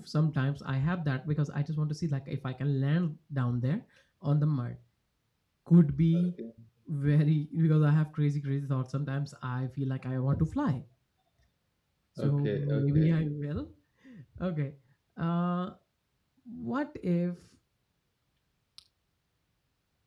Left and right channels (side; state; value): both; identical; correlation 1.00